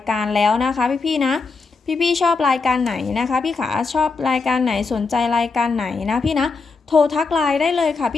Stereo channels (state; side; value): quieter; right; 4.4 dB